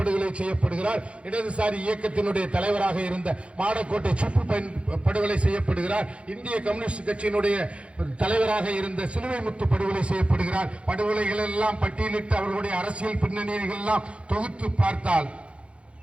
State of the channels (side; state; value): left; late; 0.060 ms